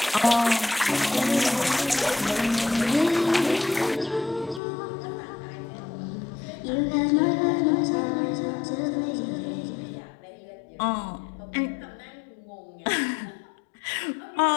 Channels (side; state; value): right; drops out; at 4.6 s